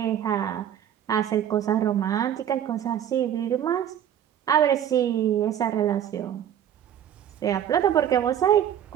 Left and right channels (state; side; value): quieter; left; 10.0 dB